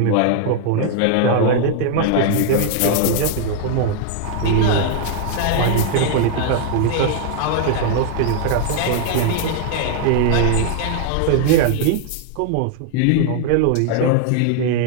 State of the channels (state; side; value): different; both; correlation 0.00